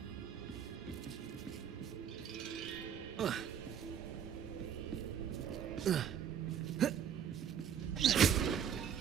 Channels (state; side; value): quieter; left; 8.5 dB